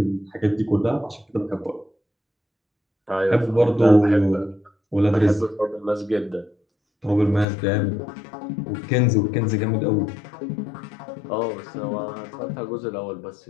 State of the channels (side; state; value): right; drops out; at 7.5 s